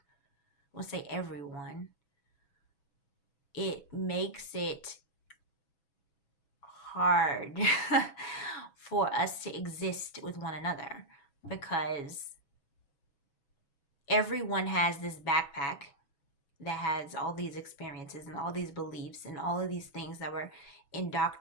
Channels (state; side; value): late; right; 6.2 ms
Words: we'll say everyone, it makes it hard for us to exist with one another, because everyone has this backpack that has all these experiences and all these beliefs and all of these things that were